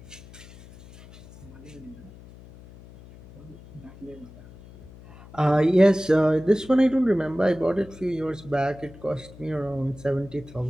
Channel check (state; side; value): noise; left; hum, 20 dB below the sound